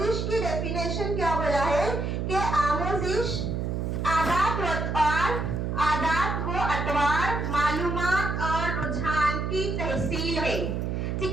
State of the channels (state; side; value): noise; right; hum, 1 dB below the sound